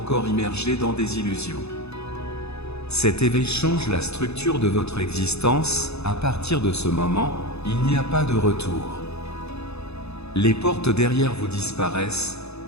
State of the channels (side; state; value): right; late; 0.79 ms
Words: immergés dans des illusions. Cet éveil change la structure de votre existence. À partir de ce moment, il n'y a pas de retour. Les portes derrière vous disparaissent,